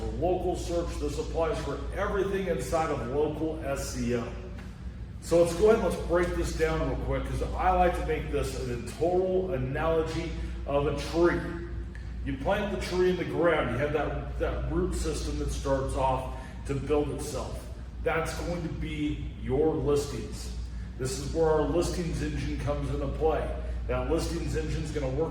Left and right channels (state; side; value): identical; both; correlation 1.00